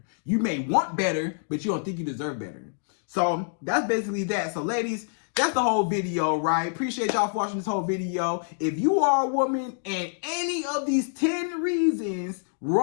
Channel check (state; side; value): silent; right; digital silence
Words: You may want better, but you don't think you deserve better. So that's basically that. So ladies, that's the whole video, right? Appreciate y'all for watching this whole video. If you are a woman and any of these 10 reasons